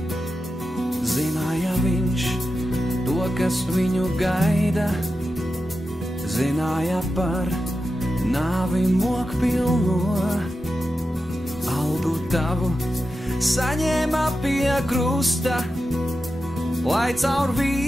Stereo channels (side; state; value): both; normal; correlation 0.91